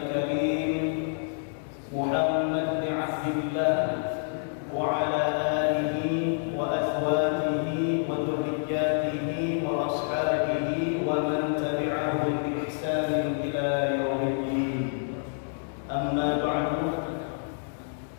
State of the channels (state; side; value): silent; right; digital silence